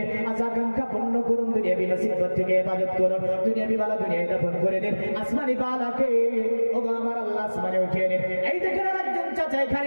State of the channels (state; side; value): inverted; both; correlation -1.00